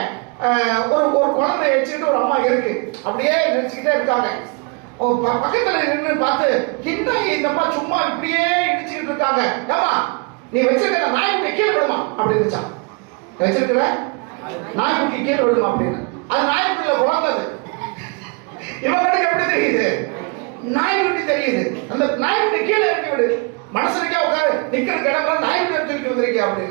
ஒரு குழந்தை வச்சுக்கிட்டு ஒரு அம்மா இருக்கு, அப்படியே நினைச்சுக்கிட்டே இருக்காங்க. பக்கத்துல நின்று பார்த்து, இந்த அம்மா சும்மா இப்படியே இடிச்சுக்கிட்டு இருக்காங்க. ஏமா நீ வச்சிருக்கிற நாய்க்குட்டி கீழே விடுமா அப்படி இருந்துச்சான். வச்சிருக்கிற நாய்க்குட்டி கீழே விடுமா அப்படின்னு. அது நாய்க்குட்டியில குழந்தது. இவங்களுக்கு எப்படி தெரியுது, நாய்க்குட்டி தெரியுது. அந்த நாய்க்குட்டி கீழே இறக்கி விடு, மனசுக்கே உட்காரு, நிக்கிற கிடமா நாய்க்குட்டி தூக்கி வந்திருக்கியா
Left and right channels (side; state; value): left; quieter; 32.0 dB